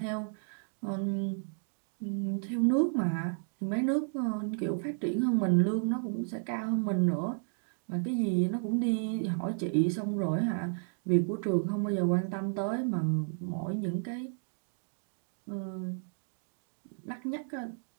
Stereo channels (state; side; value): silent; left; 56 dB below the other